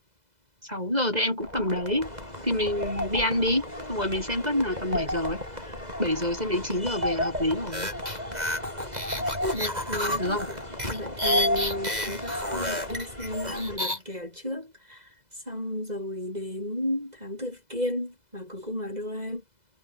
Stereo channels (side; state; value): left; late; 2.0 ms